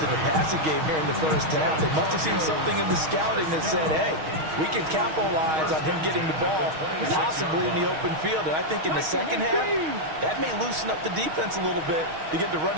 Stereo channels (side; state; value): left; late; 6.4 ms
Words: the passing game here in the first half. They must have seen something in the scouting that said, hey, we can capitalize on him getting the ball possibly in the open field. And I think in the second half, that may loosen up the defense a little bit to get the